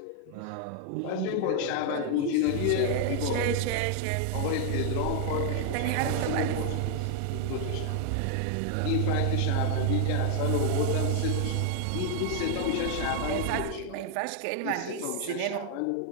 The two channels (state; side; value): different; both; correlation 0.00